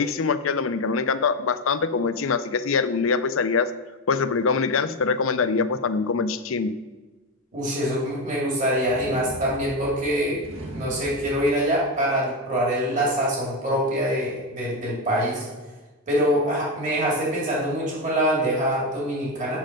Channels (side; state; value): both; normal; correlation 0.11